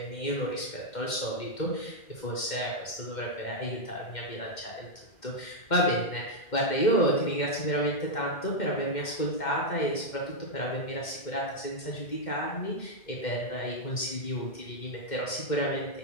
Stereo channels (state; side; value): late; right; 2.1 ms